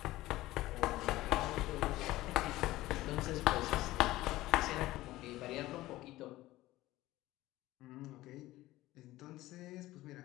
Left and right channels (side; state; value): right; quieter; 17.1 dB